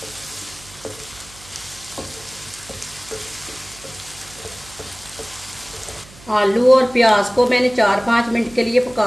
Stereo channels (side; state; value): right; noise; hum, 21 dB below the sound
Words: आलू और प्याज को मैंने 4-5 मिनट के लिए